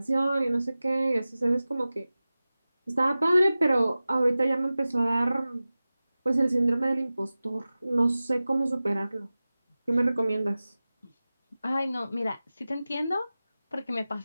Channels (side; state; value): both; inverted; correlation -0.96